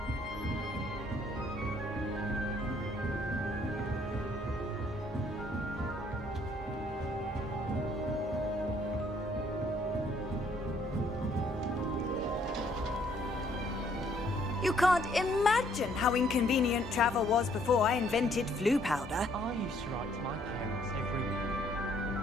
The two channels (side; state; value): both; normal; correlation 0.65